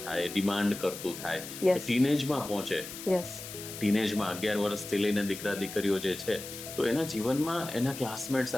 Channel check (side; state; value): left; noise; hiss, 11 dB below the sound